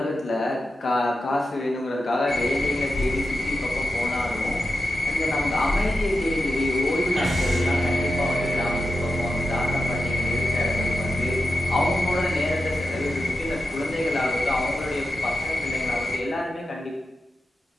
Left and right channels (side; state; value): both; normal; correlation 0.91